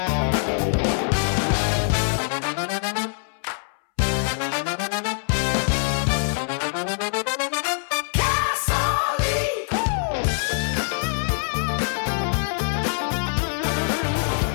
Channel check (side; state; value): right; silent; 63 dB below the other